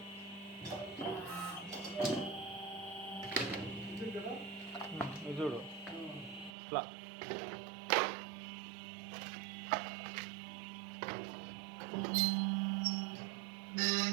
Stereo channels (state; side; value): drops out; left; at 6.6 s